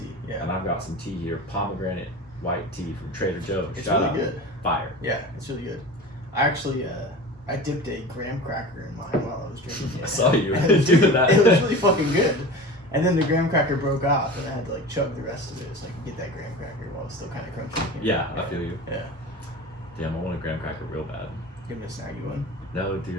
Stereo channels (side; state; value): both; normal; correlation 0.34